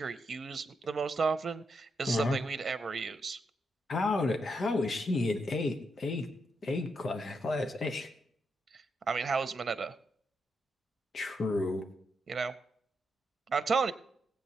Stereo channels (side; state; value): both; normal; correlation 0.82